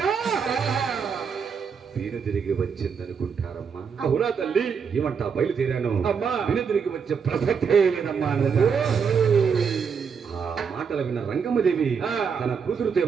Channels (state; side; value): quieter; left; 6.3 dB